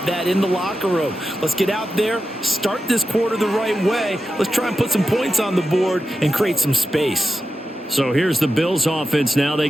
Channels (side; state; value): both; normal; correlation 0.91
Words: that in the locker room. Let's get out there, start this quarter the right way. Let's try and put some points on the board and create some space. So here's the Bills offense now. They